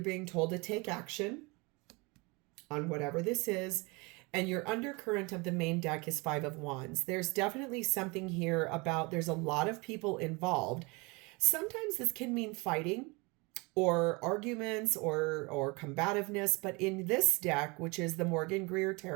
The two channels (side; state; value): left; quieter; 27.3 dB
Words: being told to take action on whatever this is. And your undercurrent of the main deck is Five of Wands. There's definitely something here about there's a lot of people involved. Sometimes this can mean fighting or arguments or combativeness. But in this deck, which is the Morgan-Greer